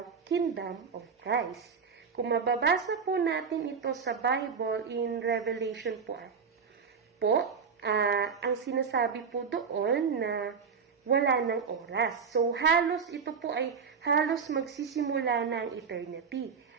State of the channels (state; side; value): quieter; left; 6.0 dB